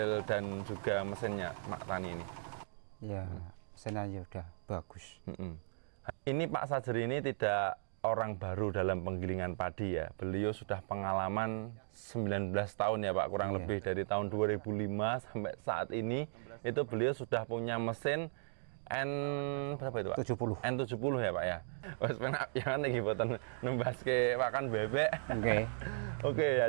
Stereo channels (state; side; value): silent; left; digital silence